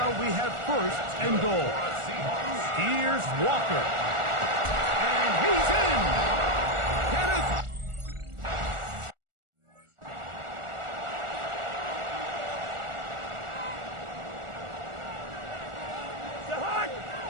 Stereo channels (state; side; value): late; left; 1.4 ms